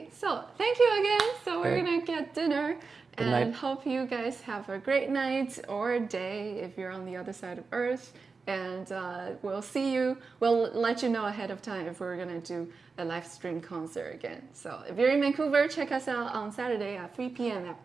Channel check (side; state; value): left; quieter; 4.6 dB